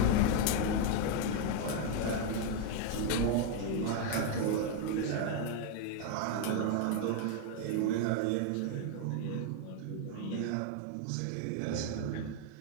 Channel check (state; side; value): different; both; correlation 0.00